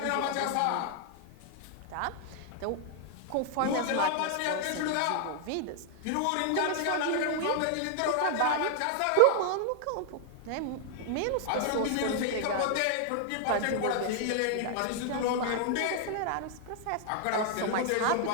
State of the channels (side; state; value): both; different; correlation 0.00